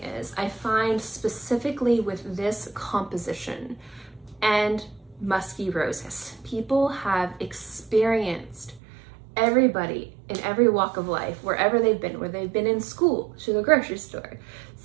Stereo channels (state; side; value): drops out; left; at 8.8 s